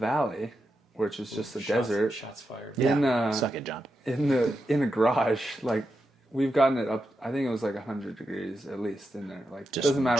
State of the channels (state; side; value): normal; both; correlation 0.87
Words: which is just a desert. Shots fired. Yeah. Suck it, John. In a garage, like we've gotten it up. I think it was like 100 degrees at least in there. Like Just doesn't